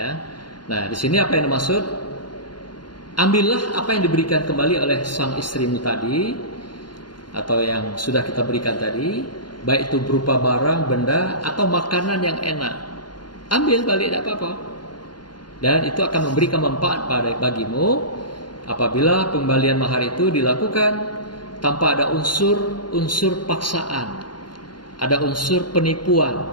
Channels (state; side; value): late; right; 0.71 ms